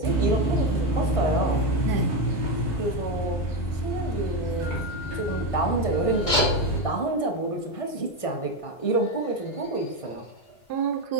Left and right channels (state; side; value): late; right; 1.6 ms